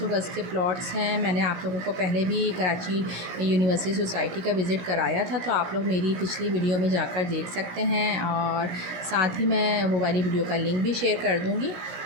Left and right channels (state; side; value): late; left; 17 ms